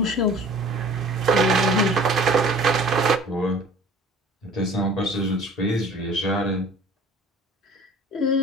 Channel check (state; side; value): normal; both; correlation 0.46